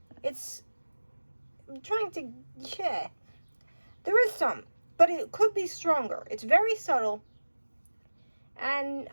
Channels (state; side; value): inverted; both; correlation -1.00